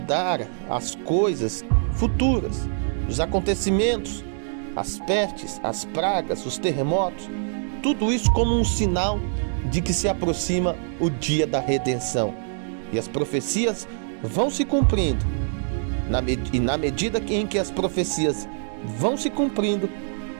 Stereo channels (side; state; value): left; silent; digital silence